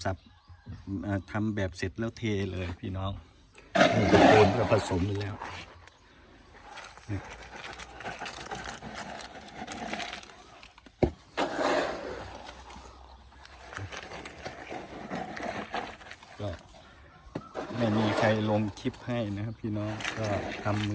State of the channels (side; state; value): both; identical; correlation 1.00